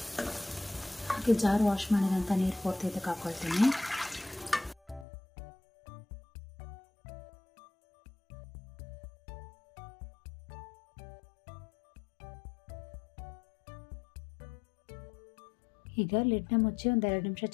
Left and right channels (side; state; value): right; drops out; at 5.1 s